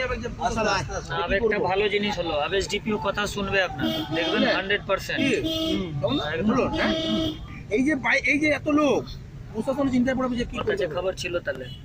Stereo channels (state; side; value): identical; both; correlation 1.00